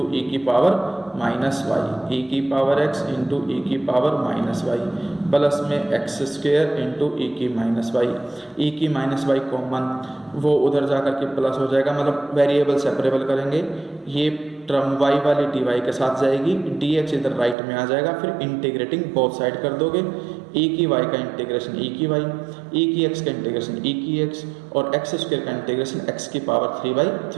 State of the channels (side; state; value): left; drops out; at 17.6 s